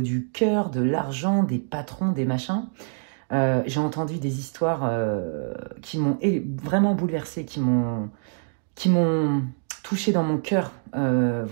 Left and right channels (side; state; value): left; silent; digital silence